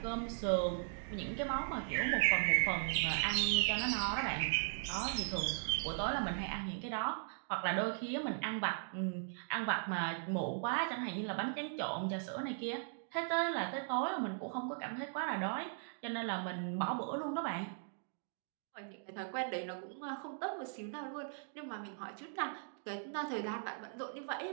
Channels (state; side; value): silent; left; digital silence